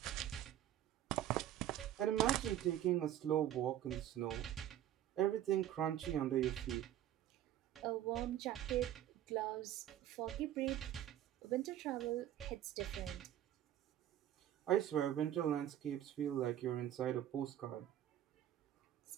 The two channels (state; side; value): quieter; left; 11.9 dB